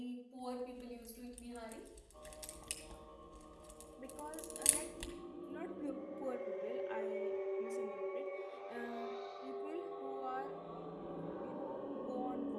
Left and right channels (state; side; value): identical; both; correlation 1.00